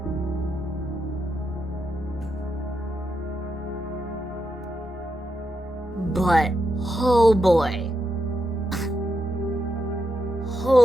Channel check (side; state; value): both; normal; correlation 0.84